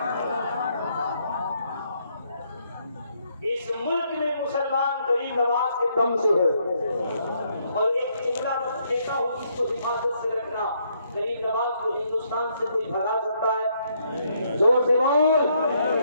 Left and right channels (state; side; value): inverted; both; correlation -0.73